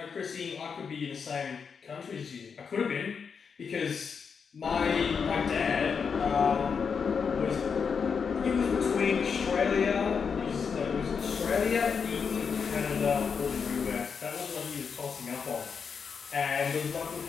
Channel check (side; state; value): right; quieter; 6.1 dB